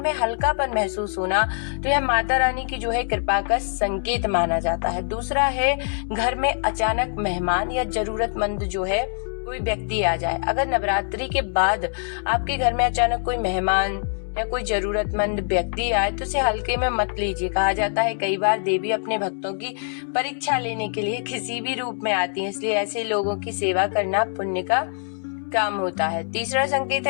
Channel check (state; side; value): silent; right; 63 dB below the other